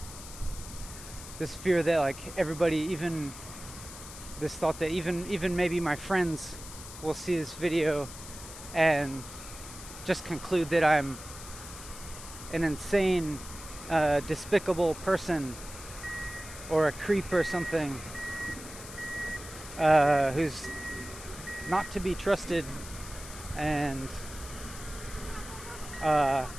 This fear that like everybody, even this thought that even maybe my friends will see this video and just conclude that I'm an insane, despicable person, or a creep or something, who's not to be trusted, and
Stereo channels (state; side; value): noise; left; hiss, 13 dB below the sound